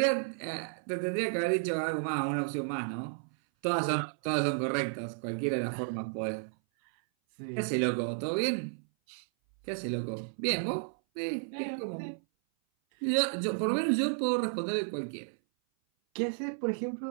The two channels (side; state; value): left; silent; 56 dB below the other